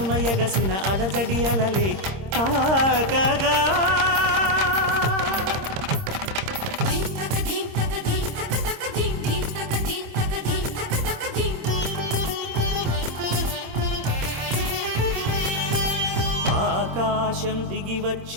ఎగసిన అలజడి అలలే తాకగా. ఆకాశం దిగి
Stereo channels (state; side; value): late; left; 26 ms